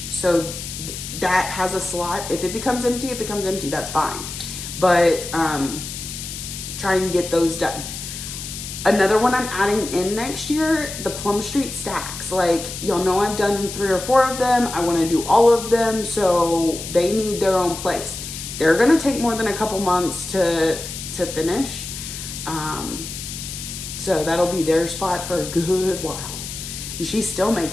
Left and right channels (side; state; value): left; noise; hiss, 8 dB below the sound